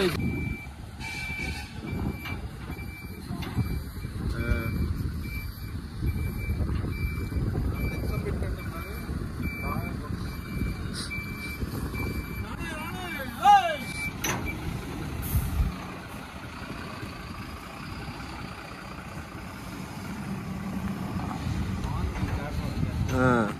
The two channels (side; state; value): both; identical; correlation 1.00